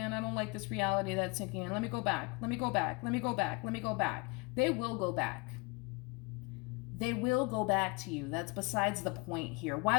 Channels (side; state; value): right; quieter; 29.1 dB